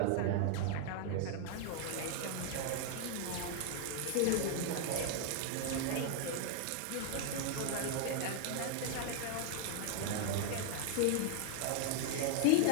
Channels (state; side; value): different; both; correlation 0.00